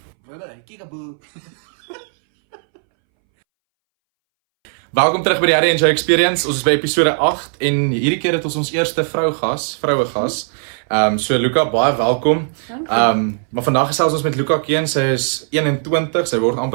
Welkom terug by die Harry and Joe Experience. Ons is by episode 8 en hierdie keer het ons eerste vroue gas. So Luca, baie welkom. Maar vandag gesels ons met Luca Keen. Sy is 21, sy word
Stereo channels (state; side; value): silent; left; 65 dB below the other